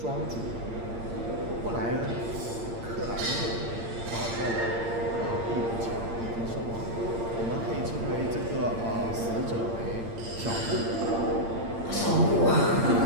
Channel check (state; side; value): late; left; 8.7 ms